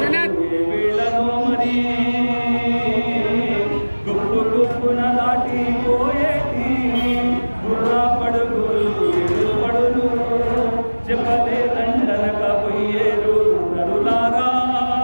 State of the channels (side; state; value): both; inverted; correlation -1.00